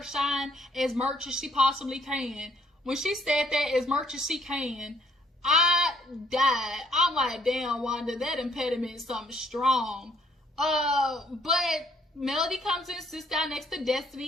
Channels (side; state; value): both; normal; correlation 0.65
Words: shine as much as she possibly can. When she said that, as much as she can, I died. I'm like, damn, Wanda, that impediment is something strong. But Melody comes in, sits down next to